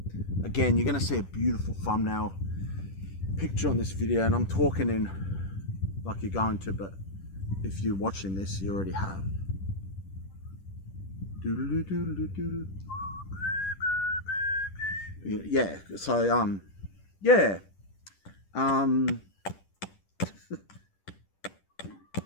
Again, you're gonna see a beautiful thumbnail picture on this video, and I'm talking in like you're going to, but if you're watching this, you already have. Yeah, so yeah,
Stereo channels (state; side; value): late; right; 10 ms